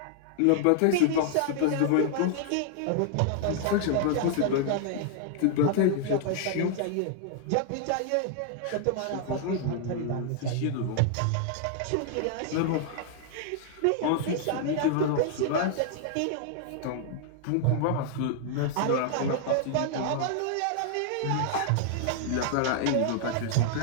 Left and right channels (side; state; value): both; different; correlation 0.00